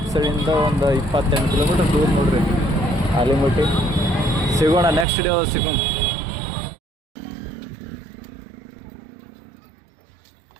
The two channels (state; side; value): drops out; left; at 5.1 s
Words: ಸೈಡಿಂದ ಒಂದು 28 ಕಿಲೋಮೀಟರ್ ದೂರ ನೋಡ್ರಿ ಆಲಿಮಟ್ಟಿ. ಸಿಗೋಣ, ನೆಕ್ಸ್ಟ್ ಡೇ ಸಿಗೋಣ.